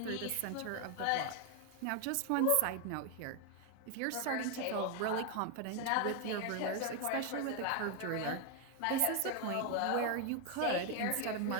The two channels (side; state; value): both; different; correlation 0.01